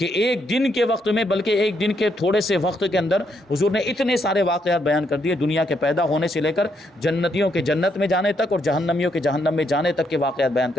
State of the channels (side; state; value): both; normal; correlation 0.76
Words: ایک دن کے وقت میں، بلکہ ایک دن کے تھوڑے سے وقت کے اندر حضور نے اتنے سارے واقعات بیان کر دیے، دنیا کے پیدا ہونے سے لے کر جنتیوں کے جنت میں جانے تک اور جہنمیوں کے جہنم میں جانے تک کے واقعات بیان